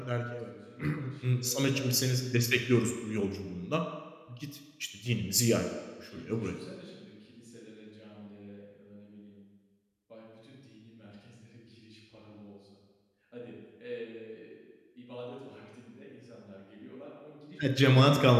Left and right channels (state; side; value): identical; both; correlation 1.00